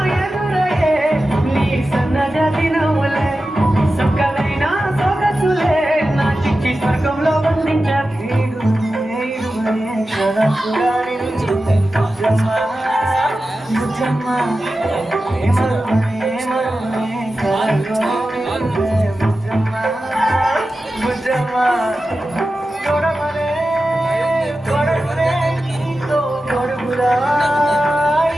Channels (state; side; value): normal; both; correlation 0.93